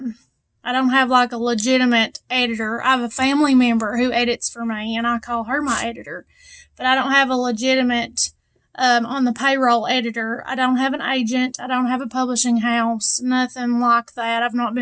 like a legitimate editor. I have a family member who edits for me, and I call her my editor. But I don't have a legitimate on the payroll editor. I don't have an agent. I don't have a publishing house. Nothing like that. I've not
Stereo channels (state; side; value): identical; both; correlation 1.00